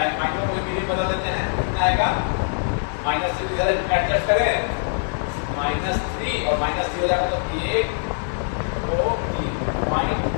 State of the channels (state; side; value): silent; right; 62 dB below the other